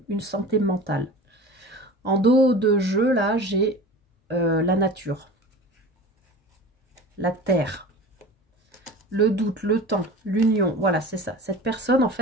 une santé mentale. En dos de jeu, là, j'ai la nature, la terre, le doute, le temps, l'union. Voilà, c'est ça. Cette personne, en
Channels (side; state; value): both; normal; correlation 0.36